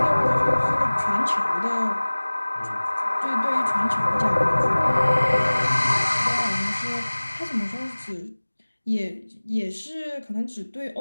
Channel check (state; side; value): inverted; both; correlation -1.00